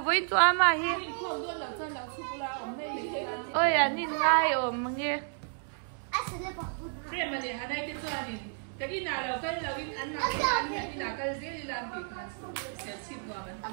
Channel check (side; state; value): left; silent; 57 dB below the other